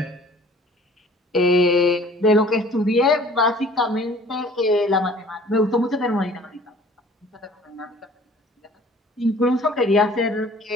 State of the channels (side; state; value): both; normal; correlation 0.51